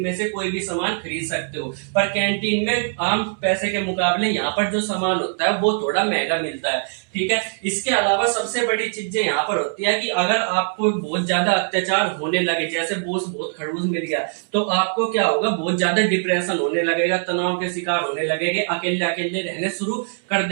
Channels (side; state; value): left; silent; 64 dB below the other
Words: में से कोई भी सामान खरीद सकते हो। पर कैंटीन में आम पैसे के मुकाबले यहाँ पर जो सामान होता है वो थोड़ा महंगा मिलता है, ठीक है। इसके अलावा सबसे बड़ी चीजें यहाँ पर होती है कि अगर आपको बहुत ज्यादा अत्याचार होने लगे, जैसे बॉस बहुत खड़ूस मिल गया, तो आपको क्या होगा, बहुत ज्यादा डिप्रेशन होने लगेगा, तनाव के शिकार होने लगेंगे, अकेले अकेले रहने शुरू कर